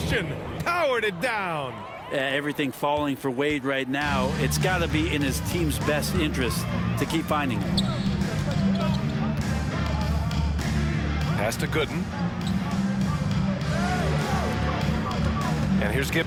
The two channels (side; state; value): both; identical; correlation 1.00